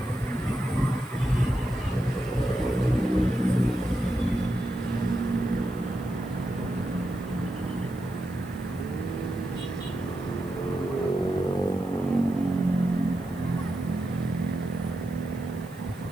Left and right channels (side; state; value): left; noise; hiss, 23 dB below the sound